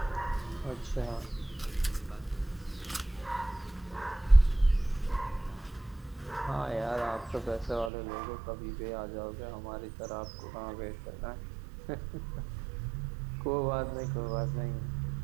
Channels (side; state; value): left; drops out; at 7.9 s